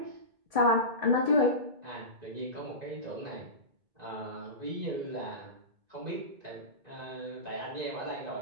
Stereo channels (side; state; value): left; late; 1.7 ms